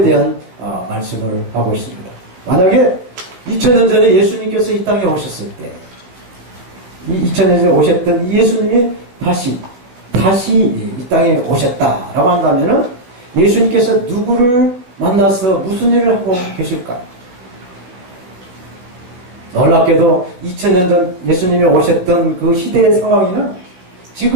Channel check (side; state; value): left; late; 16 ms